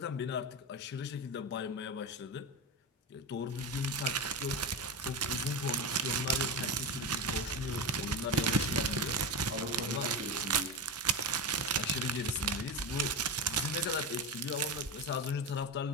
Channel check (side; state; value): both; normal; correlation 0.19